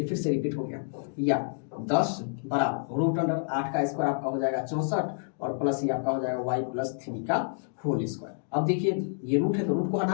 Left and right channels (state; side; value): silent; right; digital silence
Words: फिर से रिपीट हो गया, या 10 बराबर √8 का स्क्वायर आपका हो जाएगा 64 और प्लस ये आपका हो जाएगा y + 3 का होल स्क्वायर। अब देखिए ये रूट है तो रूट को